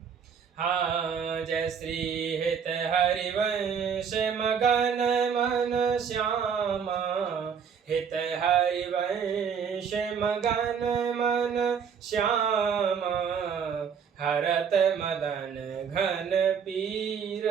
हाँ जय श्री हित हरिवंश मगन मन श्यामा, हित हरिवंश मगन मन श्यामा, हरत मदन घन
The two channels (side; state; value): left; quieter; 6.9 dB